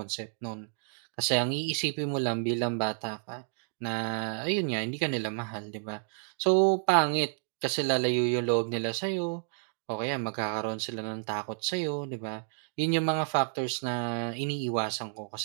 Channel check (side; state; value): left; silent; digital silence